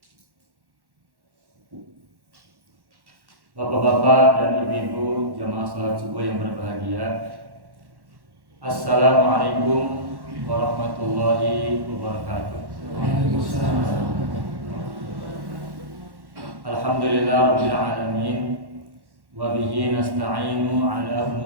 Bapak-bapak dan ibu-ibu jamaah salat subuh yang berbahagia, Assalamualaikum warahmatullahi wabarakatuh. Alhamdulillah rabbil alamin, wa bihi nasta'inu ala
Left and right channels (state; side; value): late; left; 1.1 ms